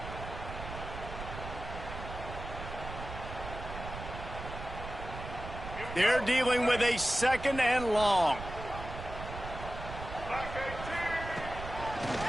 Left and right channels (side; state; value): right; noise; rumble, 9 dB below the sound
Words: They're dealing with a second and long.